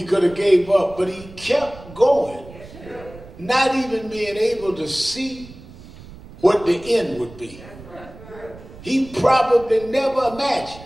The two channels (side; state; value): right; noise; rumble, 18 dB below the sound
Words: could have gave up, but he kept going. Not even being able to see what the end would be. He probably never imagined